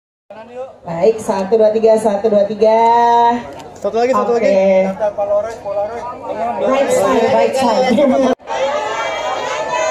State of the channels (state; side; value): identical; both; correlation 1.00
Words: Baik, 1, 2, 3, 1, 2, 3. Satu lagi. Right side.